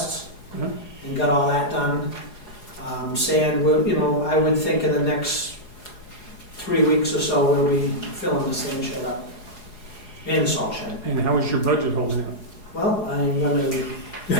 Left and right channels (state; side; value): late; right; 4.8 ms